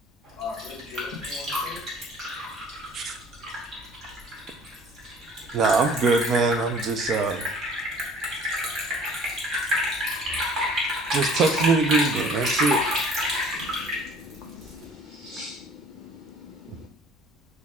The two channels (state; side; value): normal; both; correlation 0.51